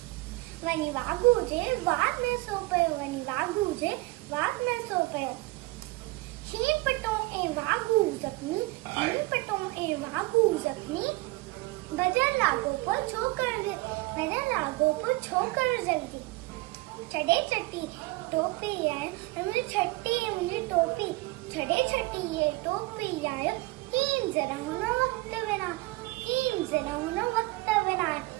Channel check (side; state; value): left; quieter; 22.0 dB